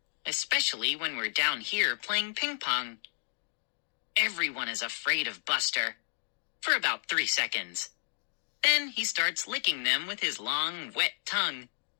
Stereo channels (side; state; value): right; silent; digital silence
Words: especially when we're down here playing ping pong. Everyone is afraid of Buster, for about 3 seconds. Then he starts licking them with his long, wet tongue,